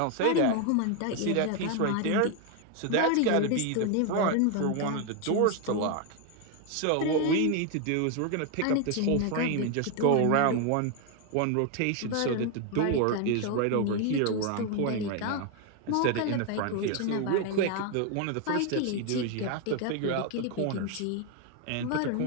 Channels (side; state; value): both; different; correlation 0.01